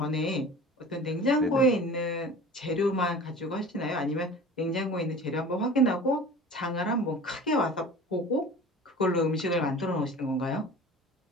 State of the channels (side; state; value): both; normal; correlation 0.40